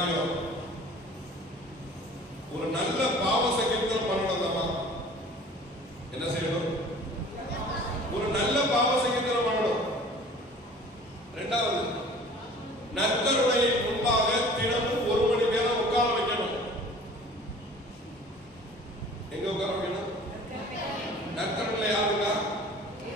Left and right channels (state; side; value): normal; both; correlation 0.46